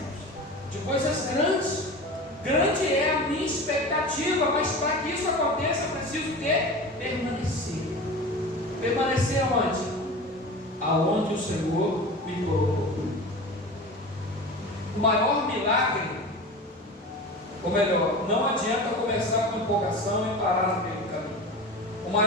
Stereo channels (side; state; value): both; normal; correlation 0.32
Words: de coisas grandes. Grande é a minha expectativa, mas para que isso aconteça, eu preciso o quê? Permanecer. Permanecer aonde? Aonde o Senhor me colocou. O maior milagre, ou melhor, não adianta começar com empolgação e parar no meio do caminho. O